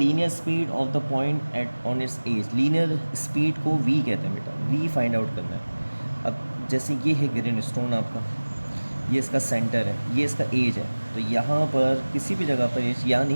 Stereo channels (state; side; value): inverted; both; correlation -1.00